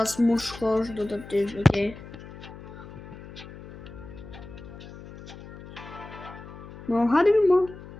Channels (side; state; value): left; noise; hum, 15 dB below the sound